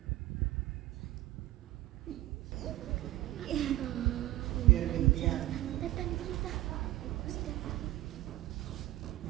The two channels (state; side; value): quieter; left; 16.8 dB